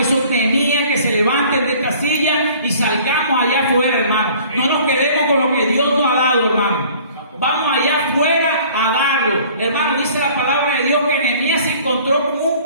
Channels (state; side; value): inverted; both; correlation -0.51